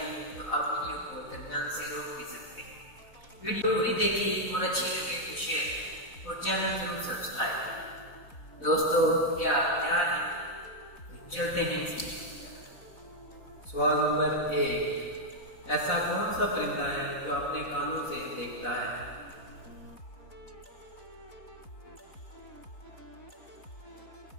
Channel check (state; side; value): late; right; 4.0 ms